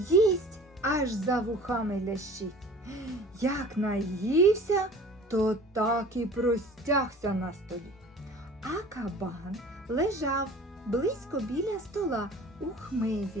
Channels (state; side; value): normal; both; correlation 0.44